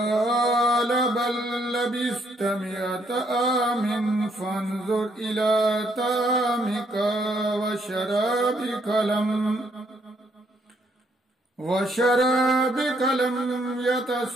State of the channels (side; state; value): both; normal; correlation 0.71